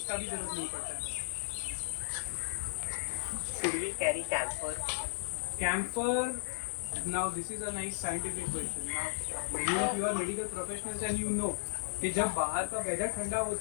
भी जरूरत नहीं पड़ता है. Should we carry camphor? Camphor, now this is a nice scientific question. Now many of you are medical professionals and you know कि जब बाहर का वेदर ठंडा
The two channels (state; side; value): silent; right; digital silence